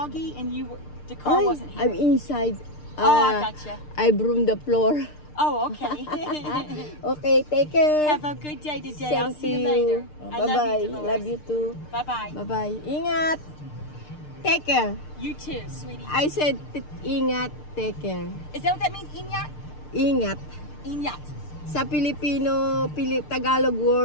and the car wasn't here. I'm inside. Oh, I gotcha. I broom the floor. Oh, okay. Okay, take care. Have a good day today. I'll Same see to you later. Oh, I bye-bye. love you, Dolores. Love you too. Bye-bye. Bye-bye. Ingat. Take care. You too, sweetie. I said ingat, take care. Is that what that means, Inyat? Ingat. Inyat. Sa Filipino, Tagalog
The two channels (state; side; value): late; right; 6.6 ms